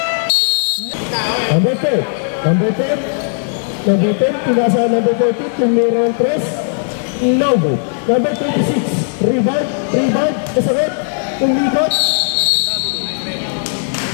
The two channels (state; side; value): silent; right; 69 dB below the other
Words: Number 10, pinasa number 40, tumira ng press, Novo. Number 26, rebound, kasakit, umikot,